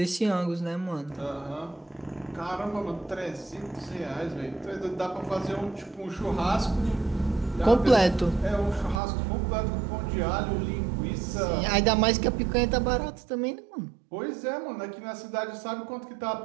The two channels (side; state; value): left; drops out; at 9.0 s